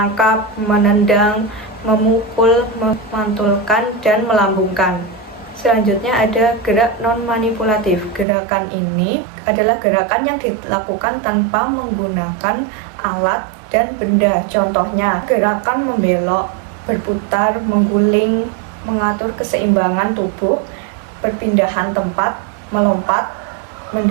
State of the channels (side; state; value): left; drops out; at 8.2 s